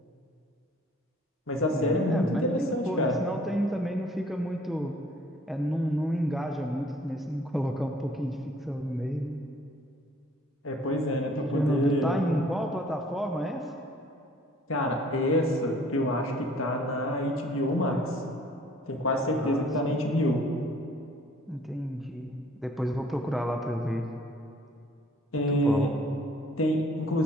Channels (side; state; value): both; normal; correlation 0.56